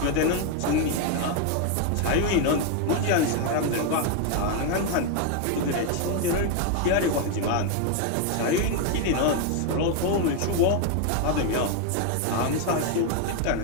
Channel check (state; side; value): different; both; correlation 0.01